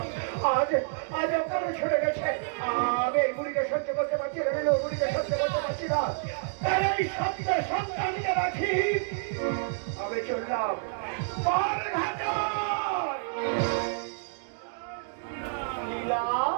আজ আজ অকালে চলে গেছে। আমি এই গুলিকে সহ্য করতে পারছি না, গুলিকে সহ্য করতে পারছি না। এই সত্য সন্তানকে রাখি আমি চললাম পারঘাট।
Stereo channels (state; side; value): silent; left; digital silence